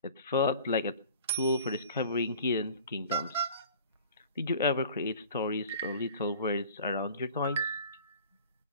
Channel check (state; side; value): inverted; both; correlation -0.45